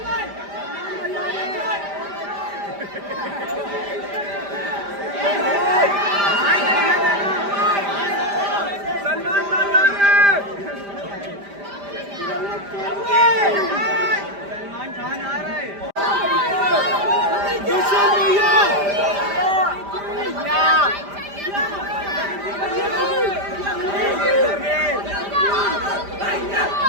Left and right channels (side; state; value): left; late; 5.0 ms